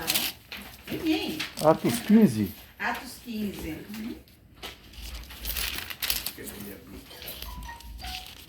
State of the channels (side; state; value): both; identical; correlation 1.00